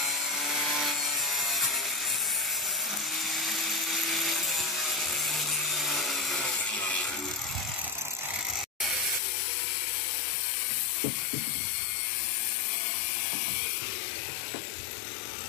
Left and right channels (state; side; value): drops out; right; at 9.2 s